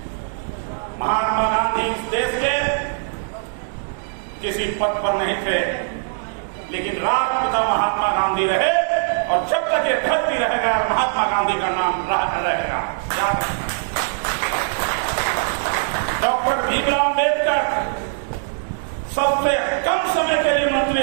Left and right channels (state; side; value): silent; left; digital silence